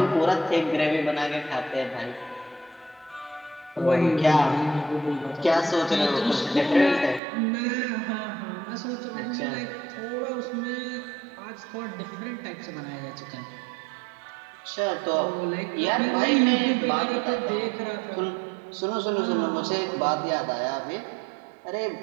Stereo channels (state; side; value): drops out; left; at 7.2 s